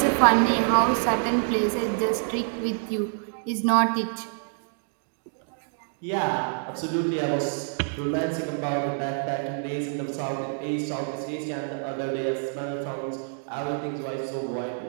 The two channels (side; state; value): left; silent; digital silence